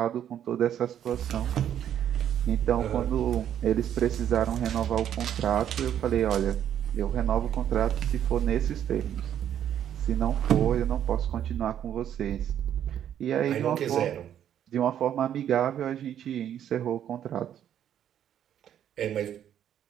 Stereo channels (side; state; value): left; quieter; 10.1 dB